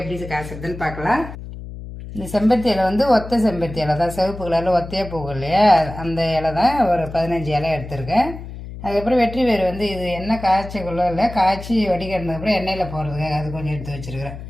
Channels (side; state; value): left; noise; hum, 11 dB below the sound